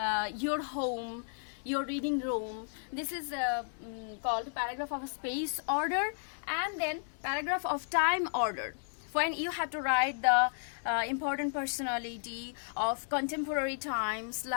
home, your reading room, this is called paragraph of space order. And then paragraph of time order, when you have to write the important personality of contemporary times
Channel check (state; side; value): silent; right; digital silence